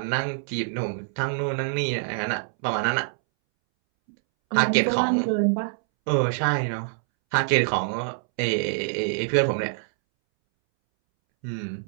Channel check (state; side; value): silent; left; 62 dB below the other